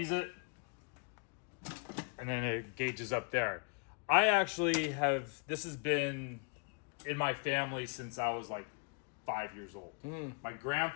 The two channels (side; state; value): right; quieter; 37.3 dB